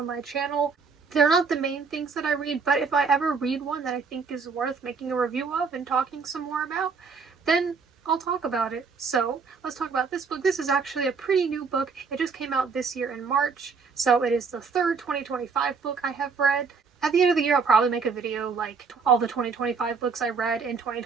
my channel. They're not the main things that I read, but if I ever read one that I think is worth making a review of and talking some more about, then I'll talk about it. So let's talk about this book. This is actually a pretty new book. It just came out this year in March, so it is the third 2025 book I have read. At the end of the year, I'll probably make a video like all the 2025 books I read in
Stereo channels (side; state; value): left; quieter; 5.2 dB